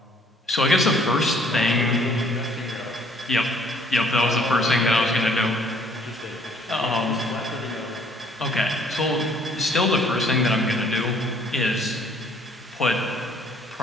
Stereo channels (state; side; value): normal; both; correlation 0.60